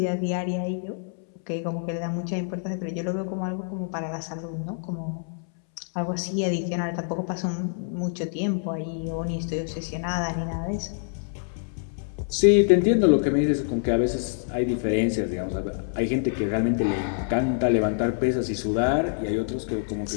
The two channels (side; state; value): right; silent; 61 dB below the other